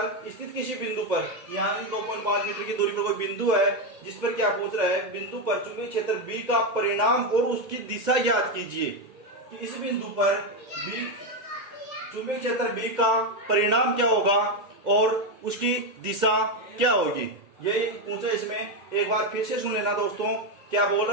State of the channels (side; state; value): left; late; 2.1 ms